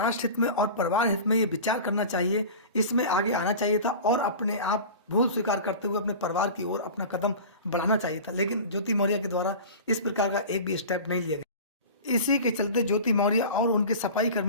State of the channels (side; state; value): both; inverted; correlation -0.35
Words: हित में और परिवार हित में ये विचार करना चाहिए, इसमें आगे आना चाहिए था और अपने आप भूल स्वीकार करते हुए अपने परिवार की ओर अपना कदम बढ़ाना चाहिए था, लेकिन ज्योति मौर्य के द्वारा इस प्रकार का एक भी स्टेप नहीं लिया गया। इसी के चलते ज्योति मौर्य और उनके सफाई